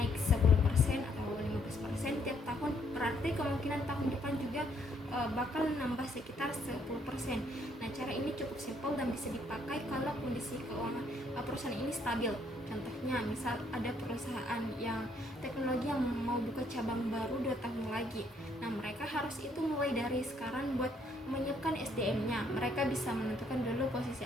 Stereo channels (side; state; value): both; normal; correlation 0.68